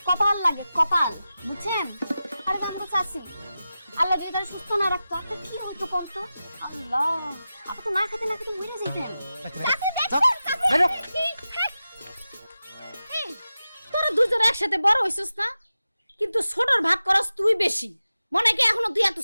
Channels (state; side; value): inverted; both; correlation -0.93